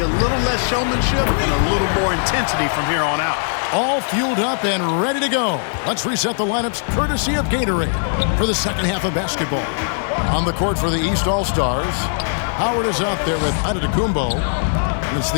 little less showmanship and a little more intensity from here on out. All fueled up and ready to go. Let's reset the lineups courtesy of Gatorade for the second half of basketball. On the court for the East All-Stars, Howard is out there with Antetokounmpo. It's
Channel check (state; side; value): silent; right; digital silence